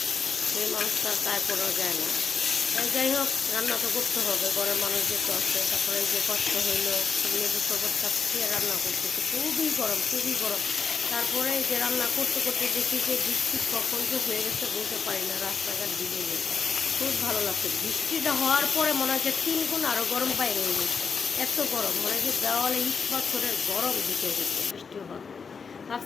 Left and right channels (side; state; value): right; quieter; 5.6 dB